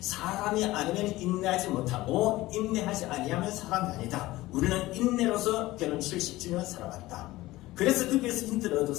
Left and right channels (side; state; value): right; quieter; 18.0 dB